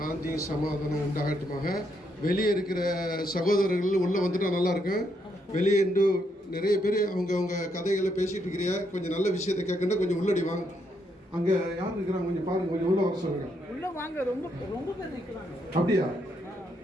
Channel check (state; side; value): normal; both; correlation 0.76